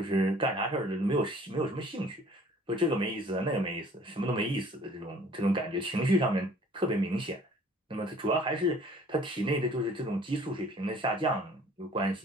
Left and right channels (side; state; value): both; normal; correlation 0.53